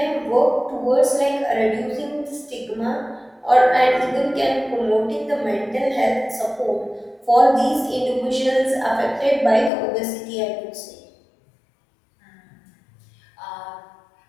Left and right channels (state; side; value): drops out; right; at 9.7 s